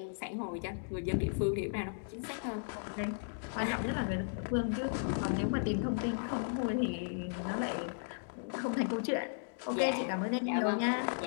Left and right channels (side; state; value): right; silent; digital silence